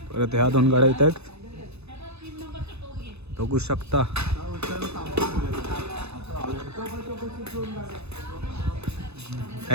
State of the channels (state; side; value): late; left; 0.80 ms